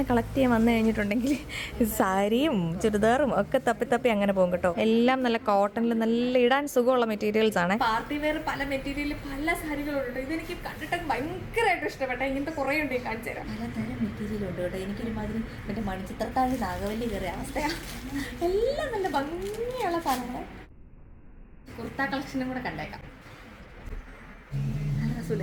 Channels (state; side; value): identical; both; correlation 1.00